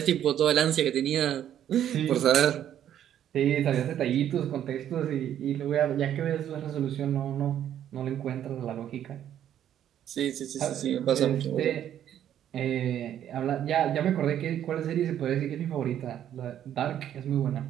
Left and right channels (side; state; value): left; quieter; 10.6 dB